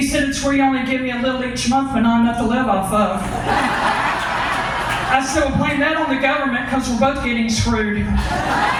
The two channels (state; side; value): identical; both; correlation 1.00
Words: said, it's where you only give me a little each month but not enough to live off of. I said, well, blame that on the government because we're both getting screwed.